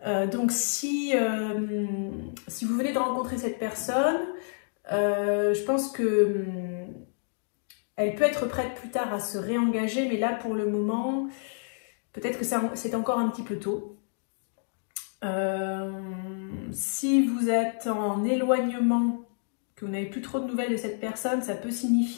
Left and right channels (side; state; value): right; silent; digital silence